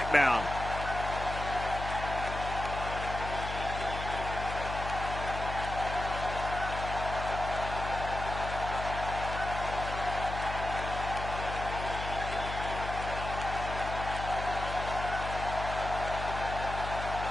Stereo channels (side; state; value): left; noise; hum, 6 dB below the sound